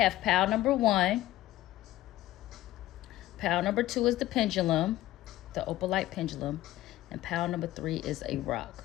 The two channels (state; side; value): quieter; right; 15.4 dB